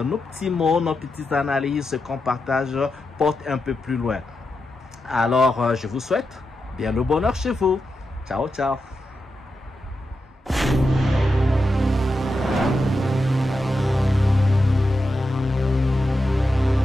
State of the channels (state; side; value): normal; both; correlation 0.88